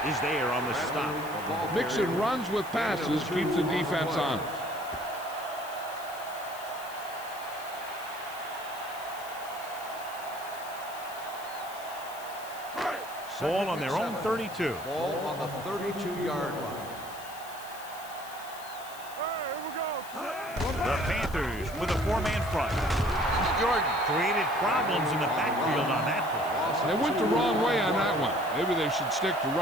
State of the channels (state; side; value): noise; left; hiss, 16 dB below the sound